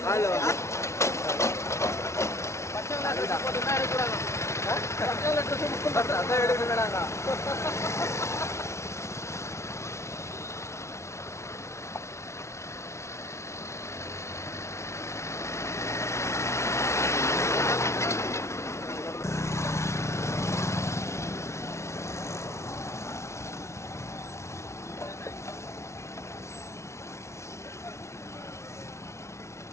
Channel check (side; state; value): right; late; 0.13 ms